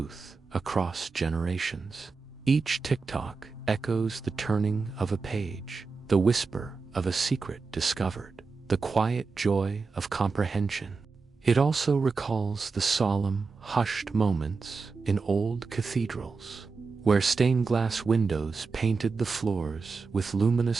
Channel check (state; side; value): quieter; left; 4.5 dB